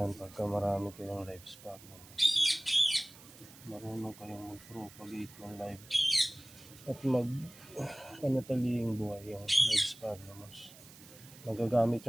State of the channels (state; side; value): noise; right; hiss, 20 dB below the sound